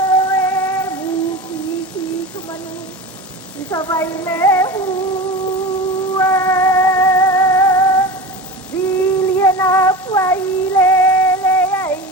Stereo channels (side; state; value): both; normal; correlation 0.29